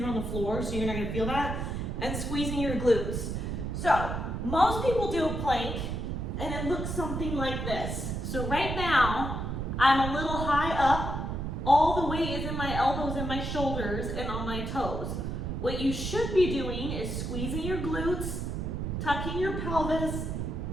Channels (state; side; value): noise; right; rumble, 3 dB below the sound